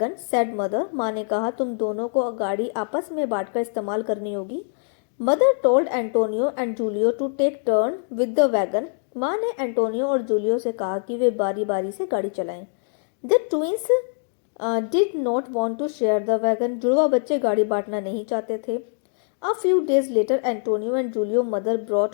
said mother. माँ ने कहा, तुम दोनों को गाड़ी आपस में बांटकर इस्तेमाल करनी होगी। Mother told Antonio and Julio to take turn with the wagon. माँ ने एंटोनियो और जूलियो से कहा कि वे बारी बारी से गाड़ी चलाएं। The twins did not want to share the wagon. जुड़वा बच्चे गाड़ी बांटना नहीं चाहते थे। A few days later, Antonio and Julio mother brought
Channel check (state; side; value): silent; right; digital silence